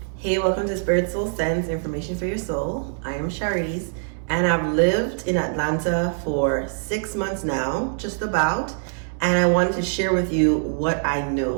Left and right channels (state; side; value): silent; left; 63 dB below the other